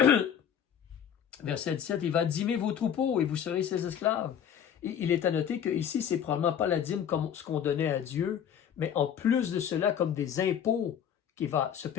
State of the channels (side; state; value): right; quieter; 8.8 dB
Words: Verset 17, il va dîmer vos troupeaux et vous serez ses esclaves. Et il est à noter que ici, c'est probablement pas la dîme comme ce qu'on donnait à Dieu, mais en plus de cela, comme des impôts qu'il va se